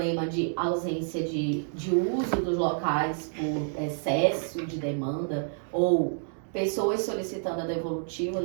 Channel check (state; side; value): silent; left; digital silence